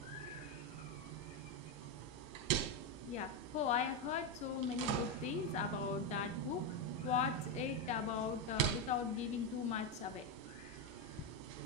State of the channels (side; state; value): both; normal; correlation 0.07